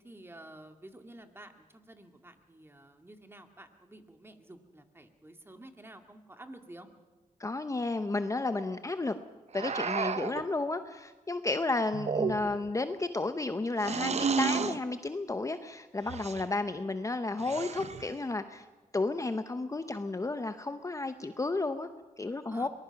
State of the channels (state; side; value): normal; both; correlation 0.66